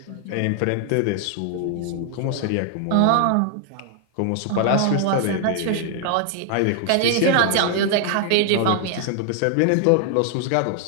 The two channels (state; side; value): different; both; correlation 0.00